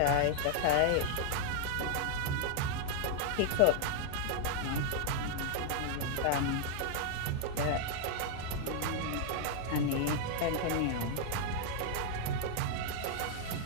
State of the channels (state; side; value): different; both; correlation 0.00